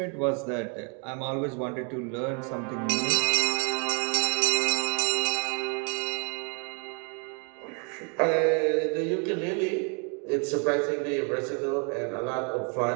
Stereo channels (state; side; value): quieter; left; 37.4 dB